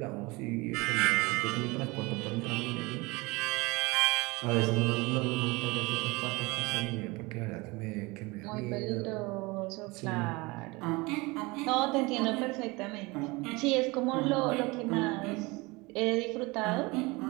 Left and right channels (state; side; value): quieter; left; 24.3 dB